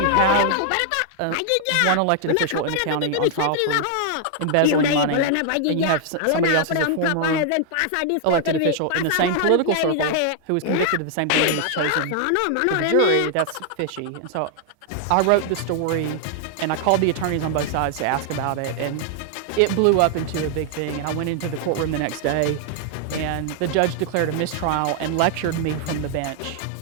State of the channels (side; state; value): both; different; correlation 0.00